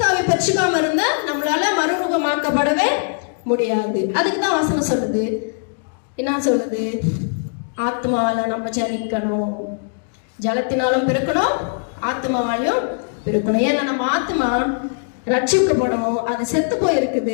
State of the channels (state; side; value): silent; right; digital silence